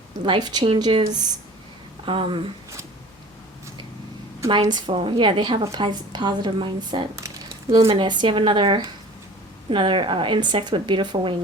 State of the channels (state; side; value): normal; both; correlation 0.43